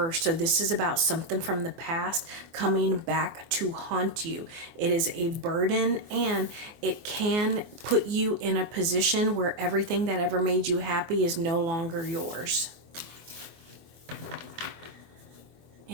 So this is about something from the past coming back to haunt you. It is a burden, and it can put you in a position where everything that ever made you happy is no longer yours.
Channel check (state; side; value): late; left; 24 ms